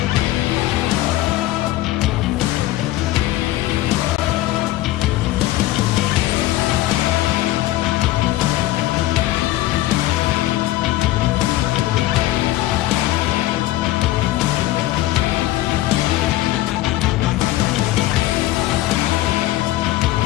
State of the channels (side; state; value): right; quieter; 16.1 dB